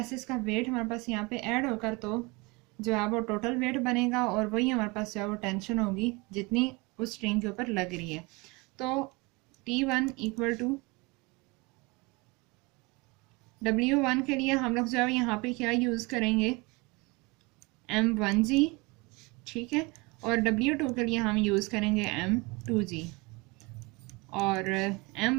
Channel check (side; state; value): left; quieter; 25.8 dB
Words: का वेट हमारे पास यहाँ पे ऐड होकर तो जो है वो टोटल वेट बनेगा, और वही हमारे पास जो है वो टेंशन होगी जितनी उस स्ट्रिंग के ऊपर लग रही है। तो T1 इक्वल टू W1 के लिए हम लोग जो है यहाँ पे क्या यूज़ करेंगे, M1g, ठीक है, और W2 के लिए हम यूज़ करेंगे M2g, और